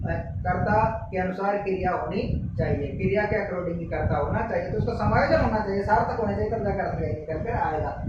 कर्ता के अनुसार क्रिया होनी चाहिए, क्रिया के अकॉर्डिंग ही कर्ता होना चाहिए। तो उसका समायोजन होना चाहिए, सार्थक होना चाहिए, तब जाकर अर्थ निकल कर आएगा।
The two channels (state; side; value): identical; both; correlation 1.00